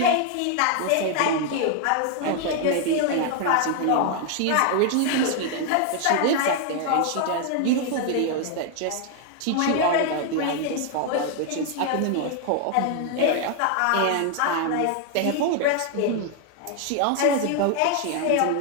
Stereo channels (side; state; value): both; different; correlation 0.00